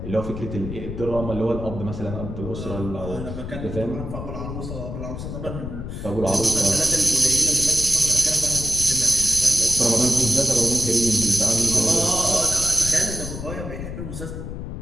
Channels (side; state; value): left; noise; rumble, 8 dB below the sound